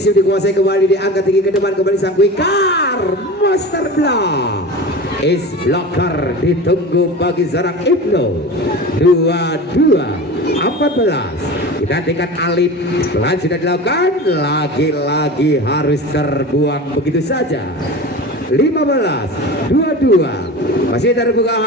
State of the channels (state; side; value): normal; both; correlation 0.32